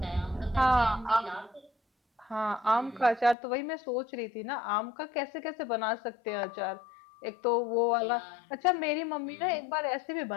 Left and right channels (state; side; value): drops out; right; at 3.4 s